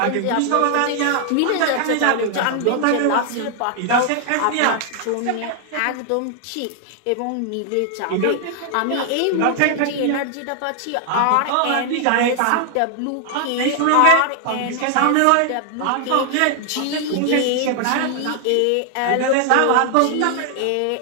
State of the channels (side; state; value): both; different; correlation 0.00